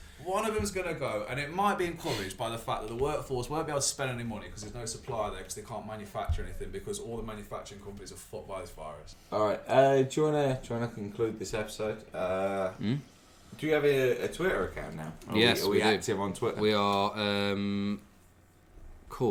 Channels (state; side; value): identical; both; correlation 1.00